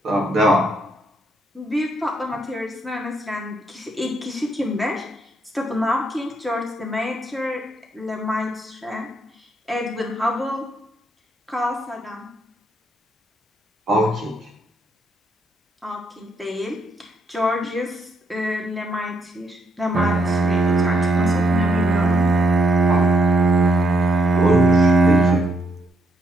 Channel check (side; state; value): both; normal; correlation 0.74